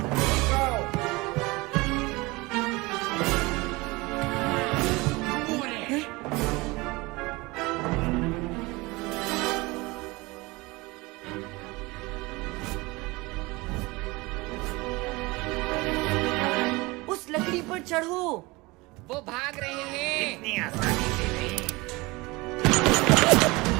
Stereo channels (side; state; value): left; quieter; 23.1 dB